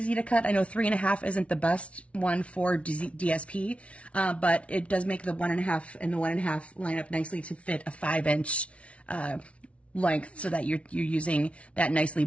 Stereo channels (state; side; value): late; right; 0.062 ms